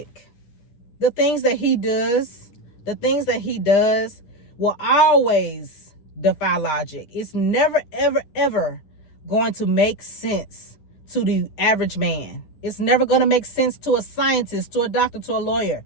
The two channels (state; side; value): late; right; 10 ms